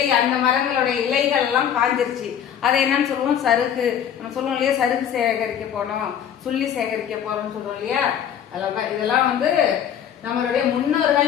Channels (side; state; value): right; quieter; 9.1 dB